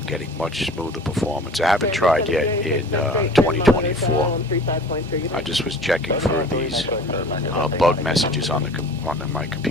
getting much smoother performance. I haven't tried yet in 2024. I just was checking for these bug messages on my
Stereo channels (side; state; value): both; normal; correlation 0.43